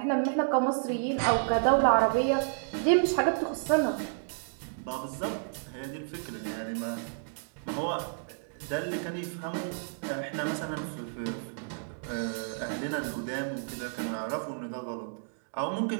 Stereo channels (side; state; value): left; silent; digital silence